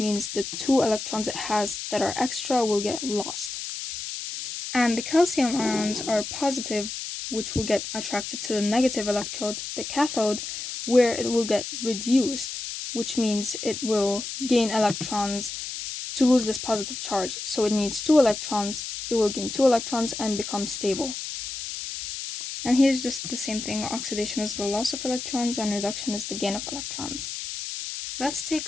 the two electrons it has that are extra will get lost. And the calcium ions are positive, which will get attracted to the negative electrode, the cathode, where it will get reduced, which means it will gain electrons to lose this positive charge. So it needs two electrons, it will gain two electrons and become stable. And here's just the same thing. Oxidation is the loss of electrons and reduction is the gain of electrons. Let's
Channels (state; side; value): noise; left; hiss, 7 dB below the sound